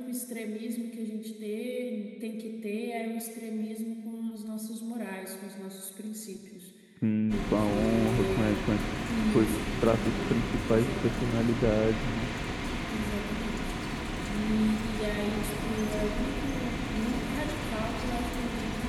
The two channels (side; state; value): both; identical; correlation 1.00